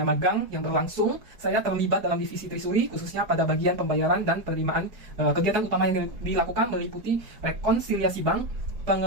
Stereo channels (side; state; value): left; late; 4.7 ms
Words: magang yang berlangsung, saya terlibat dalam divisi Trisuri khususnya pada bagian pembayaran dan penerimaan. Kegiatan utama yang dilakukan meliputi rekonsiliasi bank,